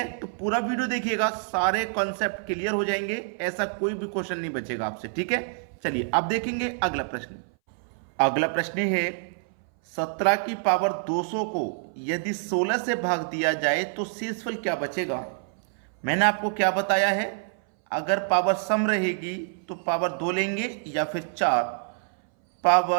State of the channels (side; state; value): left; silent; 60 dB below the other